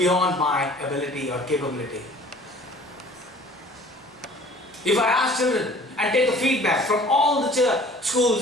my ability or capability. If I ask children and take a feedback from all the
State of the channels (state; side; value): normal; both; correlation 0.50